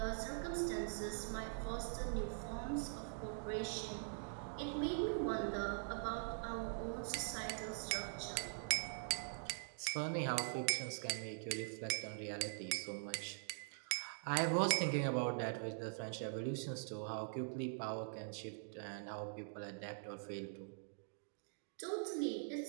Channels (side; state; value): left; silent; digital silence